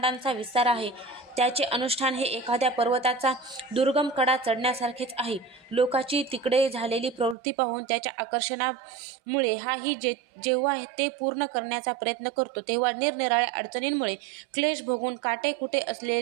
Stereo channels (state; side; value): drops out; left; at 7.4 s